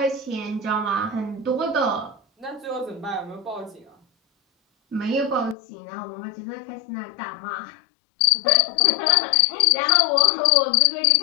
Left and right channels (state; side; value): drops out; right; at 5.6 s